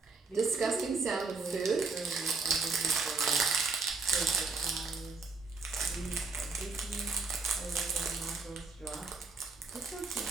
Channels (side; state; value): left; quieter; 4.2 dB